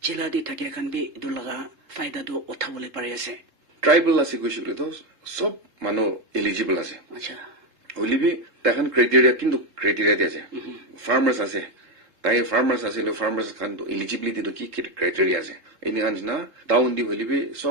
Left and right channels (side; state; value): left; late; 3.7 ms